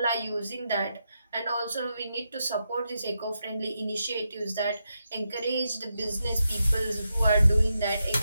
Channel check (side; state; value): both; inverted; correlation -0.85